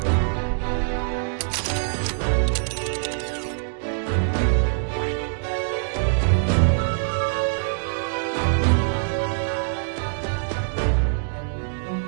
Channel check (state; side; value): silent; left; digital silence